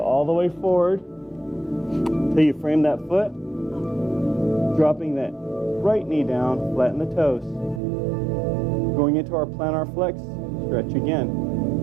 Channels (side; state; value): left; drops out; at 7.8 s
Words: the way forward until you frame that foot, dropping that right knee down, flatten the toes. Going into our plantar flex, stretch again.